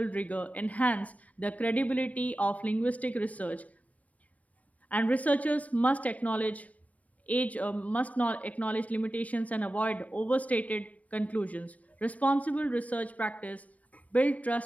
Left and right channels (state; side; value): late; right; 0.070 ms